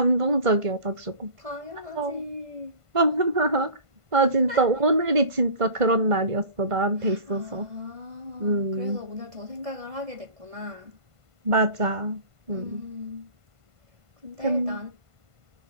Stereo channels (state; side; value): late; left; 1.5 ms